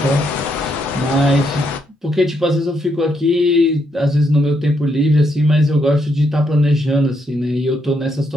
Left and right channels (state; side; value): normal; both; correlation 0.77